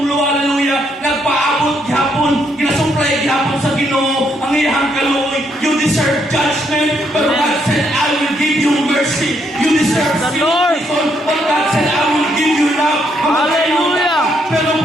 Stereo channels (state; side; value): normal; both; correlation 0.74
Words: hallelujah, nagpaabot gihapon, ginasuplay gihapon sa Ginoo, ang iyang kaluoy. You deserve judgment, but God said, I will give you mercy. You deserve The Lord. but God said, I will give you love. Hallelujah. Pero